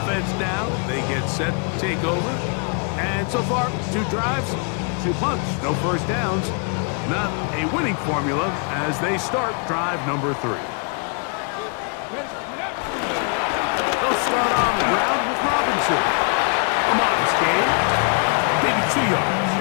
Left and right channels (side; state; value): right; quieter; 38.1 dB